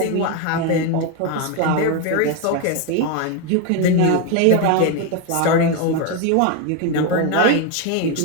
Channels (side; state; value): both; different; correlation 0.01